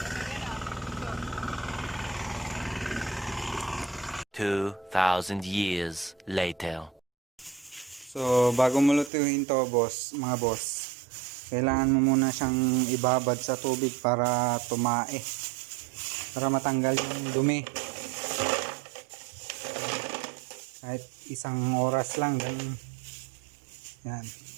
2,000 years later. So, bago mo lutuin to, boss, mga boss, kailangan mo muna siyang ibabad sa tubig para tumae. Para matanggal yung dumi. Kahit isang oras lang, ganun. Yan.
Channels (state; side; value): drops out; left; at 9.1 s